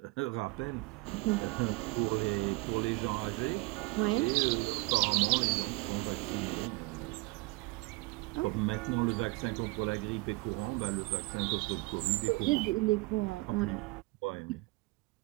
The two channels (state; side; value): quieter; left; 23.8 dB